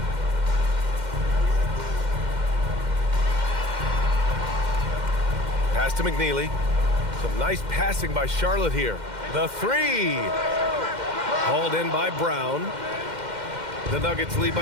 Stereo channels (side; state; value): left; late; 2.1 ms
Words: Pass to McNeely. Some nice passing by Charlotte here. The 3. Hauled in by Brown. The Nuggets lead